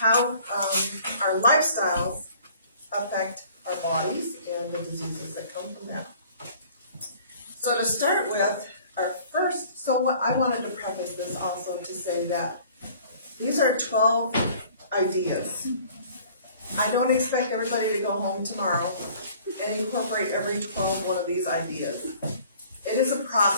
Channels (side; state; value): both; inverted; correlation -0.52